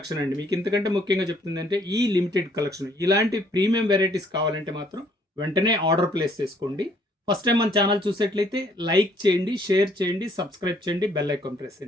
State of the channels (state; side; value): normal; both; correlation 0.64